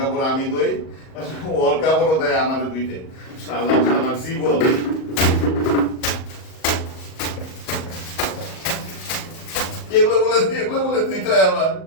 আমি ধুই, ওর কাপড়ও দেয় আমার ধুইতে। শালা শালা জীবন। এগুলো বলে ধুইতে হয় আমার,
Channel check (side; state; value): right; late; 38 ms